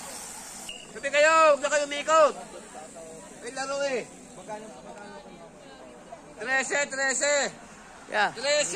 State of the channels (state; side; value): identical; both; correlation 1.00